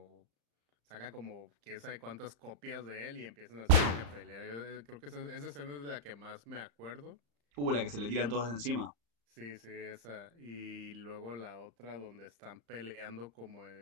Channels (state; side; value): late; left; 35 ms